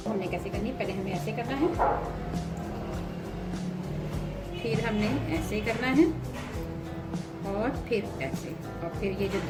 हमने कैसे करनी है, पहले हमें ऐसे करना है, फिर हमने ऐसे करना है और फिर ऐसे, और फिर ये जो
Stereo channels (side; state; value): both; identical; correlation 1.00